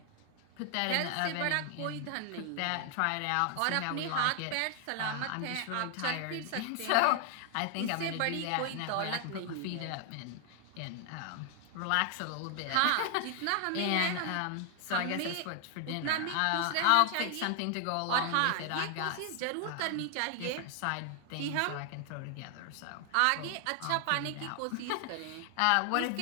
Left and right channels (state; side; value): different; both; correlation 0.00